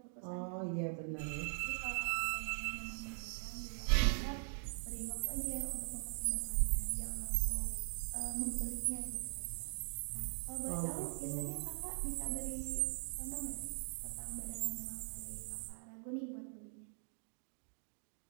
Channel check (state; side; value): silent; left; 50 dB below the other